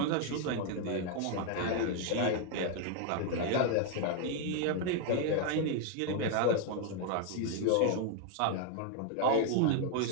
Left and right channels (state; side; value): different; both; correlation 0.00